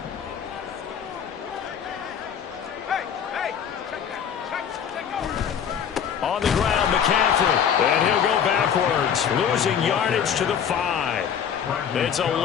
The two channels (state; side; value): quieter; right; 8.1 dB